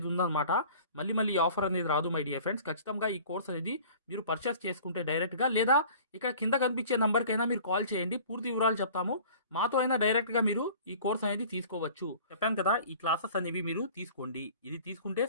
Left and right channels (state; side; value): inverted; both; correlation -0.46